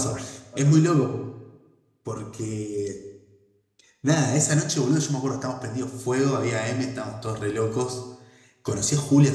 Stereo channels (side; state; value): both; identical; correlation 1.00